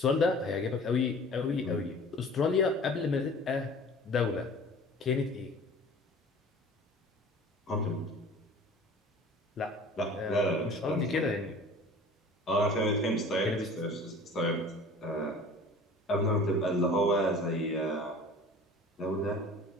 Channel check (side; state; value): both; normal; correlation 0.44